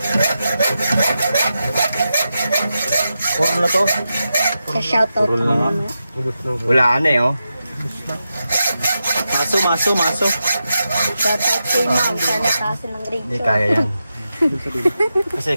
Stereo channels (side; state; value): both; inverted; correlation -0.89